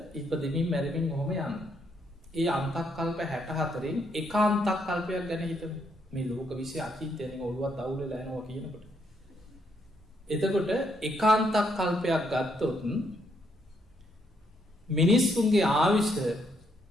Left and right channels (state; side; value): normal; both; correlation 0.74